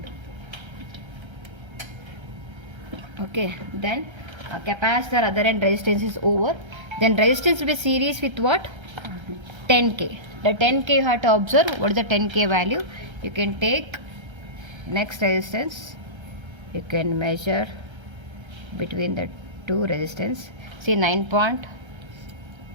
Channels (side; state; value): left; late; 1.3 ms